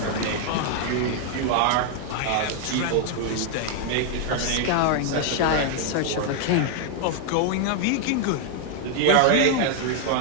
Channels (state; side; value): different; both; correlation 0.00